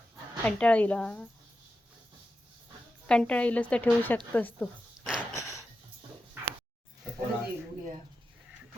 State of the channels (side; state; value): both; normal; correlation 0.90